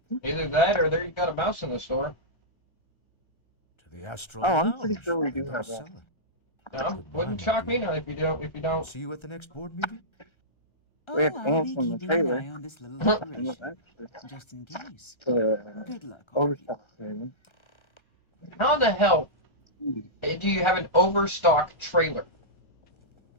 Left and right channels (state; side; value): late; right; 1.3 ms